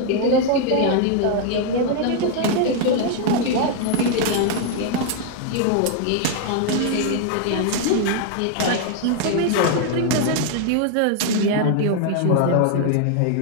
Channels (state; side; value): different; both; correlation 0.00